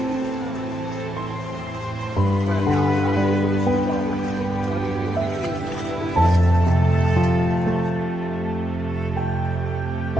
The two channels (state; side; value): normal; both; correlation 0.81